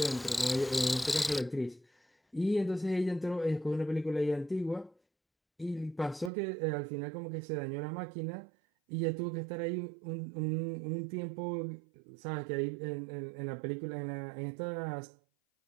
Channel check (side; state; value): left; drops out; at 6.3 s